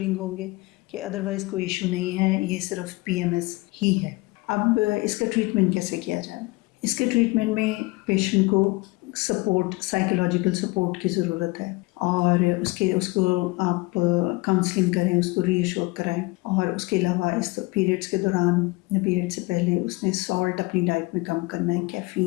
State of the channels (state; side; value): quieter; right; 23.4 dB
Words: ہوں گے کہ ادروائز کوئی ایشو نہیں ہے، یہ صرف PMS ہی ہے. اب اس کا ٹریٹمنٹ کیسے کیا جائے؟ اس کے ٹریٹمنٹ میں پیشنٹ کو سپورٹ، سائیکولوجیکل سپورٹ کی ضرورت ہے، اور اس کو آپ کاؤنسلنگ کریں، اس کو ری ایشور کرائیں. اور اس کے علاوہ اس پیریڈس کے دوران یا پیریڈ سے پہلے اس نے سالٹ اپنی ڈائٹ میں کم کرنا ہے،